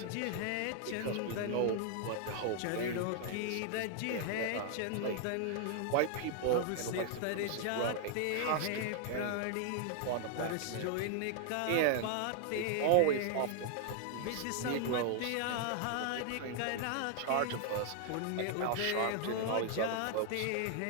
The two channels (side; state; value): both; different; correlation 0.00